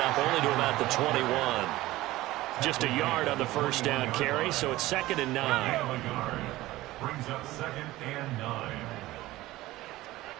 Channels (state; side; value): quieter; left; 17.4 dB